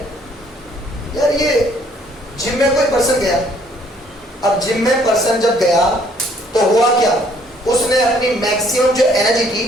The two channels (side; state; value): both; normal; correlation 0.62